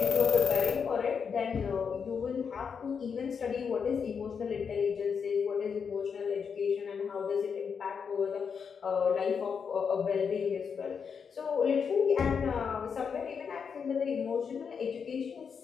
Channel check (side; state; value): right; quieter; 6.3 dB